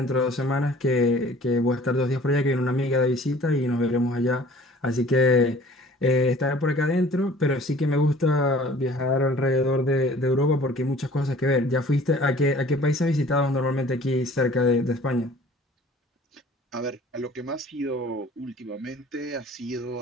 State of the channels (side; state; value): both; normal; correlation 0.50